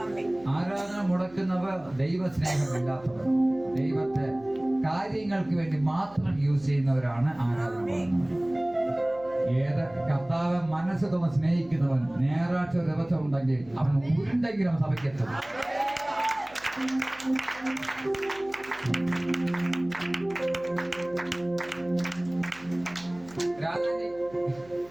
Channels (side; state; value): right; noise; hum, 24 dB below the sound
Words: ആരാധന മുടക്കുന്നവർ ദൈവസ്നേഹമില്ലാത്തവർ, ദൈവത്തെ കാര്യങ്ങൾക്ക് വേണ്ടി മാത്രം യൂസ് ചെയ്യുന്നവരാണ് ആരാധന മുടങ്ങുന്നവർ. ഏത് കർത്താവ് മനസ്സ് തോന്നി സ്നേഹിക്കുന്നവൻ ഞായറാഴ്ച ദിവസം ഉണ്ടെങ്കിൽ അവൻ ഉരുണ്ടെങ്കിലും സഭയ്ക്കെത്തും. രാജാജി